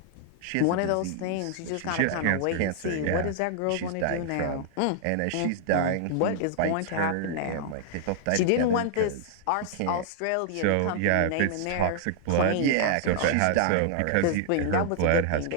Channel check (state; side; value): different; both; correlation -0.01